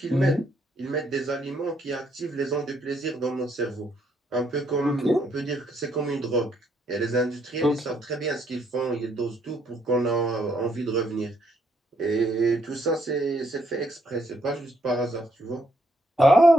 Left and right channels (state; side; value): normal; both; correlation 0.72